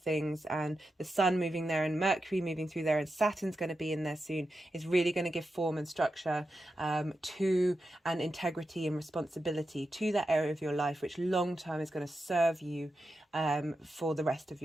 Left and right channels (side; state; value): both; normal; correlation 0.89